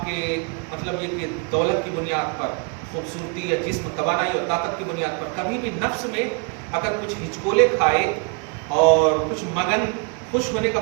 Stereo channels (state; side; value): quieter; left; 35.3 dB